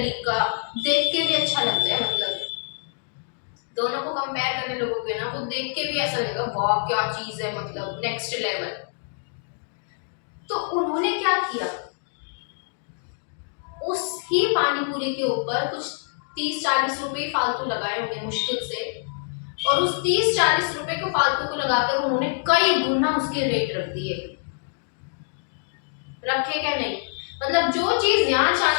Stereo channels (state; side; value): silent; right; digital silence